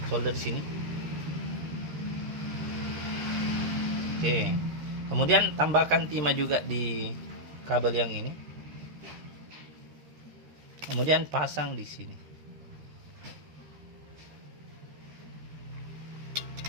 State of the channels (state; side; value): late; left; 13 ms